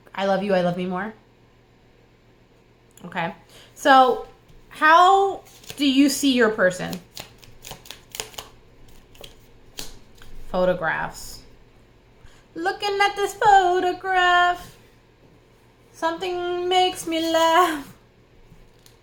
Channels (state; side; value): identical; both; correlation 1.00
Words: I love you, I love me more. Okay. So how do you see your person? Photographs. Looking at this photograph, something makes me laugh.